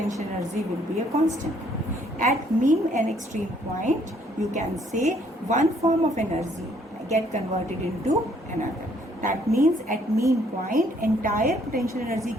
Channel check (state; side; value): normal; both; correlation 0.65